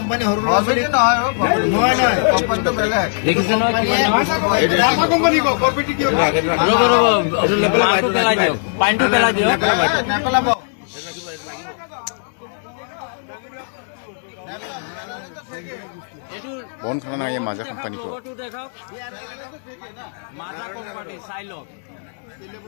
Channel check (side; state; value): right; silent; digital silence